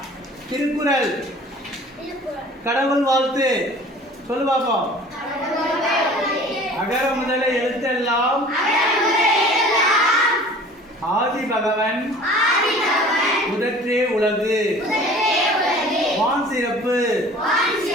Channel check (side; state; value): both; normal; correlation 0.46